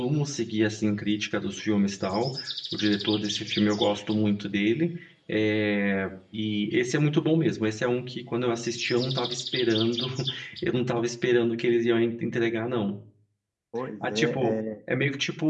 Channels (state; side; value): identical; both; correlation 1.00